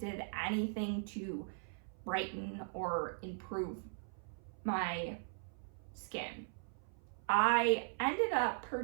anything to brighten or improve my skin. I ended up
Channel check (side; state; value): left; silent; 52 dB below the other